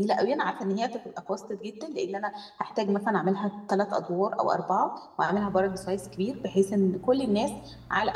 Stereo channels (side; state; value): both; identical; correlation 1.00